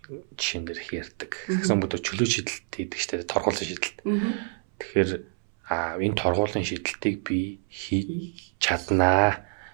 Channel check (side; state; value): left; silent; 60 dB below the other